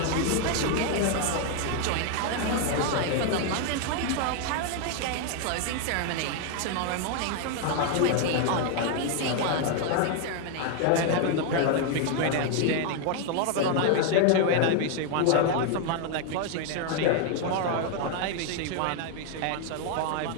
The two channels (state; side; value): different; both; correlation 0.01